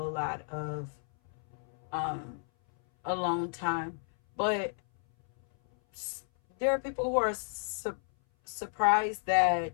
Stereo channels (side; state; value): right; silent; 57 dB below the other